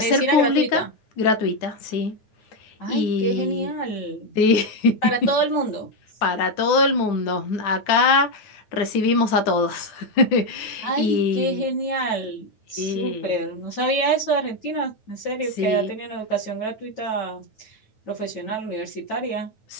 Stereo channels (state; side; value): late; right; 9.3 ms